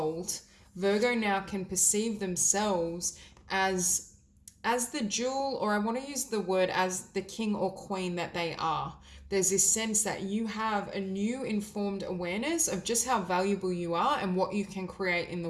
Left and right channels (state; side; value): identical; both; correlation 1.00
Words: Virgo now can perceive themselves as the jewel, or I want to use the word as the king or queen that they are. There's this sense that you have a new informed awareness of just how valuable you are and what you can create in the